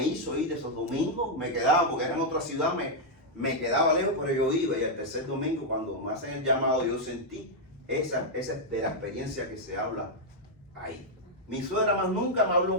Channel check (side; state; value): both; normal; correlation -0.03